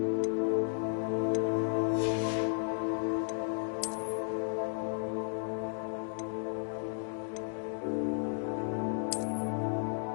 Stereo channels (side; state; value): right; silent; digital silence